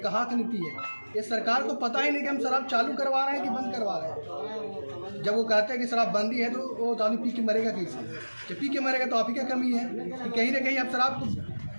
की नीति है? ये सरकार को पता ही नहीं कि हम शराब चालू करवा रहे हैं कि बंद करवा रहे हैं। जब वो कहते हैं कि शराबबंदी है तो वो आदमी पी के मरेगा कैसे? जब पी के मरेगा तो आप ही क्या कमी है कि कहीं ना कहीं आप शराब को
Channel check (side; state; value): both; inverted; correlation -1.00